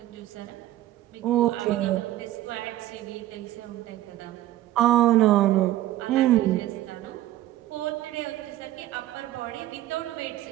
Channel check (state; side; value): quieter; left; 14.4 dB